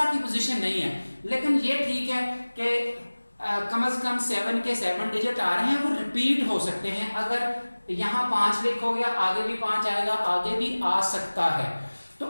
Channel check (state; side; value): inverted; both; correlation -1.00